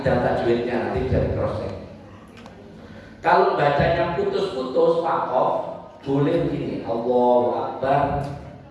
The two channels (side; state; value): both; identical; correlation 1.00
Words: tajwidnya, nanti bisa di cross check. Kalau bacanya putus-putus wakof, boleh begini, Allahu Akbar,